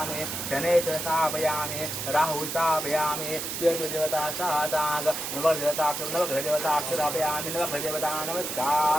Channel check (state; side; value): noise; right; hiss, 4 dB below the sound